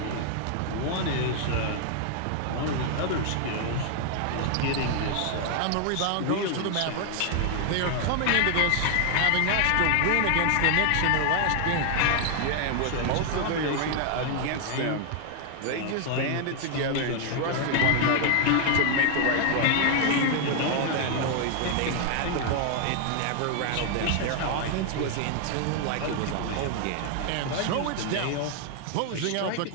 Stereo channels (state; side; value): different; both; correlation 0.00